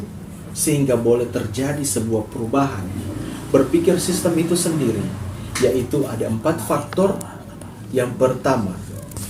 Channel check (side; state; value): both; identical; correlation 1.00